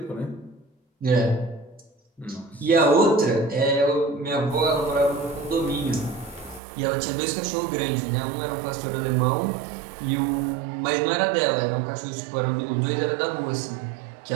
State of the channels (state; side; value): drops out; left; at 6.6 s